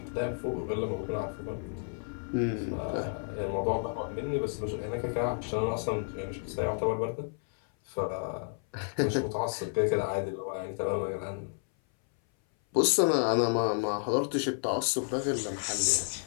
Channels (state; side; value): silent; right; 57 dB below the other